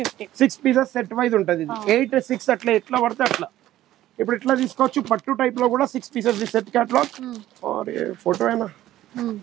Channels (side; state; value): left; quieter; 14.0 dB